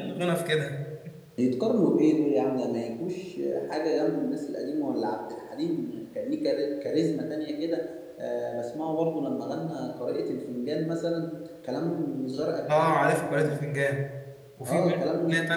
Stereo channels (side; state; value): both; identical; correlation 1.00